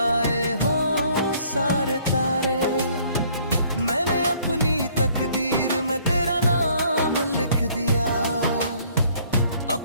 हों सारे तारे। मैंने अपनी तकदीर में तेरा नाम लिख दिया,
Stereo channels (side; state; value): both; inverted; correlation -0.61